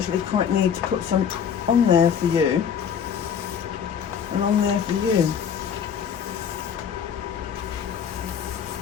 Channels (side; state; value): right; quieter; 7.7 dB